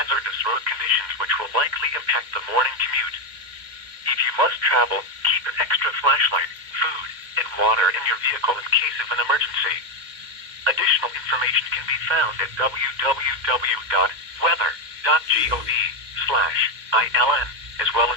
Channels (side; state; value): left; late; 2.1 ms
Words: road conditions which will likely impact the morning commute. If you must travel, keep an extra flashlight, food, and water in your vehicle in case of an emergency. Additional information can be found at www.weather.gov/ILN, as well